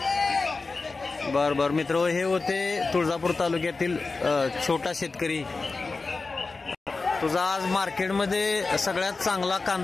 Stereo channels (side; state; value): right; quieter; 3.9 dB